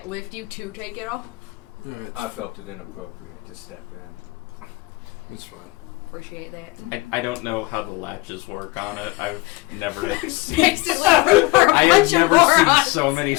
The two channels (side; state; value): right; quieter; 22.2 dB